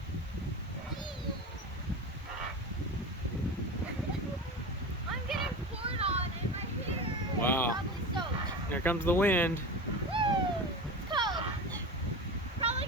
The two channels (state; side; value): normal; both; correlation 0.27